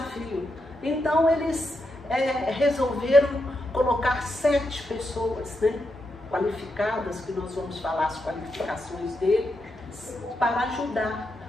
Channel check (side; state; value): both; normal; correlation 0.84